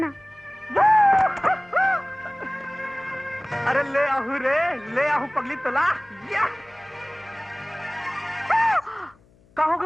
अरे ले आहू रे, ले आहू पगली तला। या कहोगे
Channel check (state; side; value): noise; left; hum, 30 dB below the sound